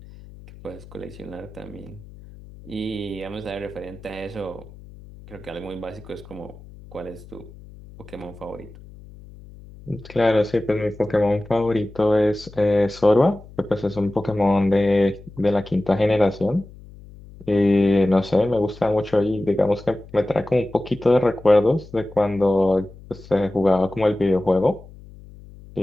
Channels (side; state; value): left; noise; hum, 19 dB below the sound